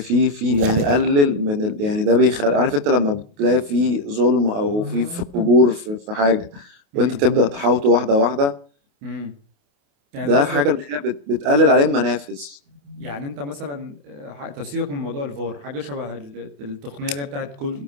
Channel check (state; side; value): late; left; 28 ms